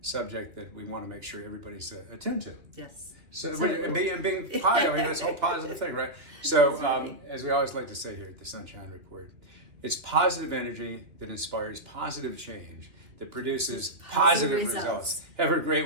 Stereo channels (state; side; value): late; left; 2.6 ms